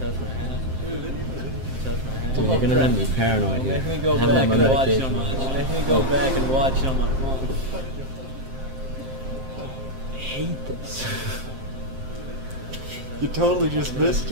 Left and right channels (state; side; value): late; left; 7.6 ms